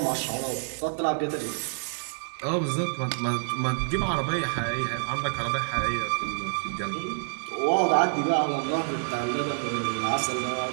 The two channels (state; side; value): silent; left; digital silence